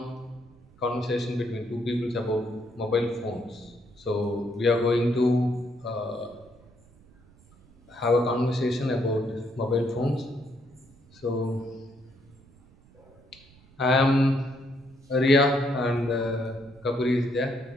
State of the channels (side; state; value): right; noise; rumble, 27 dB below the sound